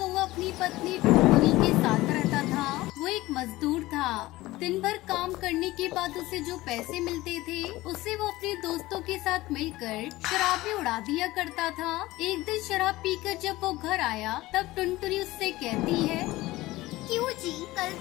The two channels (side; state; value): right; quieter; 18.4 dB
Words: अपनी पत्नी टुनटुनी के साथ रहता था। वो एक मजदूर था। दिन भर काम करने के बाद उसे जो पैसे मिलते थे उसे वो अपने दोस्तों के साथ मिलकर शराब में उड़ा दिया करता था। एक दिन शराब पीकर जब वो घर आया तब टुनटुनी उससे कहती है, क्यों जी, कल